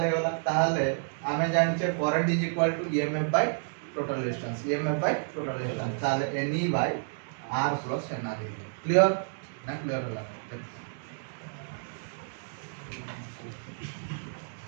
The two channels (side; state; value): left; silent; digital silence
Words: हे होला ताहले आमे जानचे current is equal to EMF by total resistance EMF by total resistance ताहले N E by R plus N R clear ना क्लियर होला